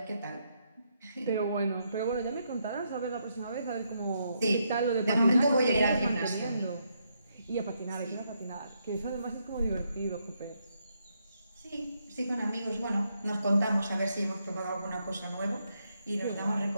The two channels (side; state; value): both; inverted; correlation -0.78